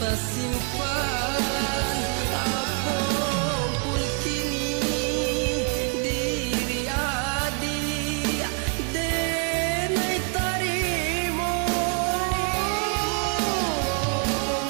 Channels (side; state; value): left; quieter; 39.6 dB